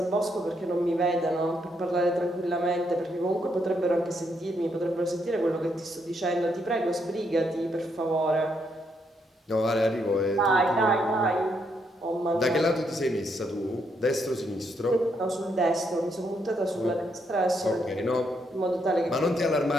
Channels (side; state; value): both; normal; correlation 0.76